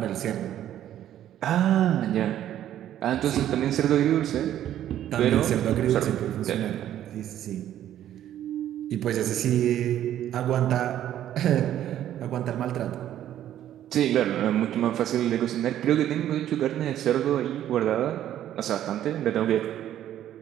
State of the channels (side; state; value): left; quieter; 11.6 dB